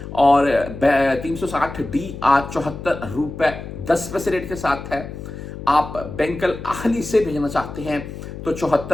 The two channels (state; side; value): noise; left; hum, 10 dB below the sound